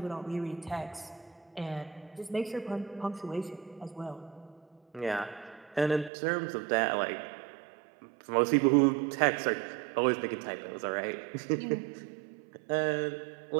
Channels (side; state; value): left; drops out; at 6.1 s